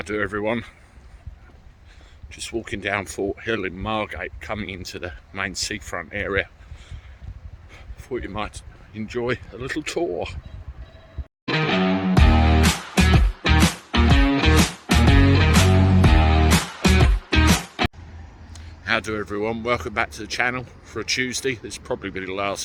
do everyone? Just walking down Fort Hill in Margate, coming into the main seafront area. Thought you might enjoy a little tour. How do everyone? Welcome back to the channel for a Tuesday. This will probably be the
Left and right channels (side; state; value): both; identical; correlation 1.00